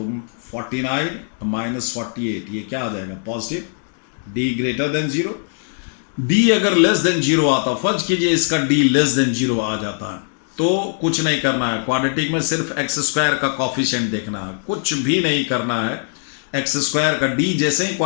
49 -48, ये क्या आ जाएगा, positive. D greater than zero, d अगर लेस देन जीरो आता, फर्ज कीजिए इसका डी लेस देन जीरो आ जाता है, तो कुछ नहीं करना है। क्वाड्रेटिक में सिर्फ एक्स स्क्वायर का कॉफिशिएंट देखना है, कुछ भी नहीं करना है। एक्स स्क्वायर का डी जैसे ही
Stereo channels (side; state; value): right; silent; digital silence